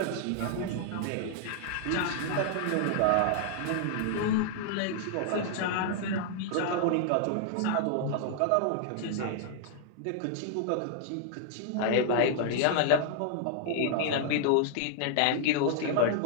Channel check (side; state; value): both; different; correlation -0.01